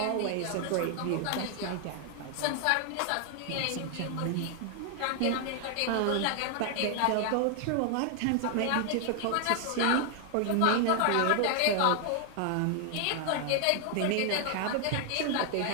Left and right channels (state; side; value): different; both; correlation 0.00